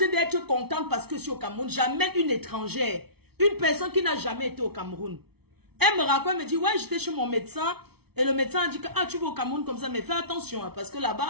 d'être contente parce que je suis au Cameroun. J'amène une étrangère, une personne qui n'a jamais été au Cameroun. Elle me raconte, elle me dit, ouais, j'étais chez mon médecin. Et le médecin a dit que, ah, tu vas au Cameroun comme ça, mais fais attention, hein, parce que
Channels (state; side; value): late; left; 0.97 ms